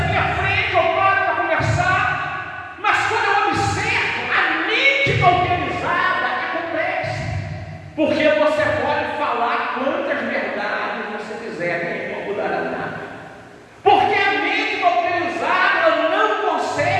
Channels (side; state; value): both; identical; correlation 1.00